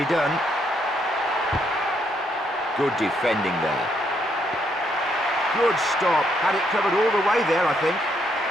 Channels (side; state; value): both; normal; correlation 0.74